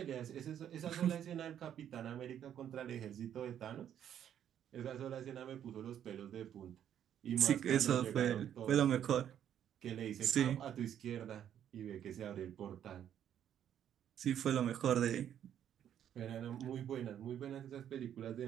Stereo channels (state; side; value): quieter; left; 9.9 dB